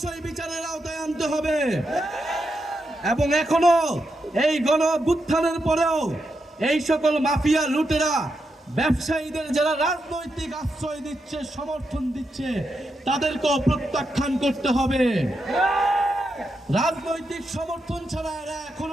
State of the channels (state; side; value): normal; both; correlation 0.85